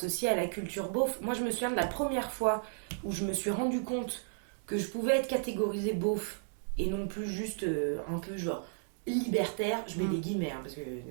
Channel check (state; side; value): silent; left; digital silence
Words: à la culture beauf. Moi, je me souviens de la première fois où je me suis rendu compte que je pouvais être catégorisée beauf et non plus juste un peu genre libertaire, je mets des guillemets, hein, parce que